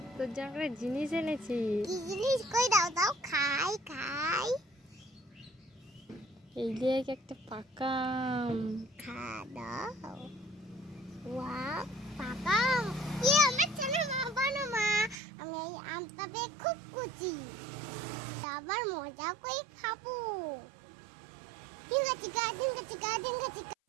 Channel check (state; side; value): drops out; left; at 15.2 s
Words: তোর জন্য একটা জিনিস এনেছি। কি জিনিস? কই দাও দাও, খাই খাই। এই দেখ একটা পাকা আম। খা দাও। ওয়াও, পাকা আম। আমার ছেলে মা বানো মা। আমি এই আমটা বেশ খুব কুচি। আবার মজা করে খাবো। ডিঙ্গা চিকা ডিঙ্গা চিকা ডিঙ্গা চিকা।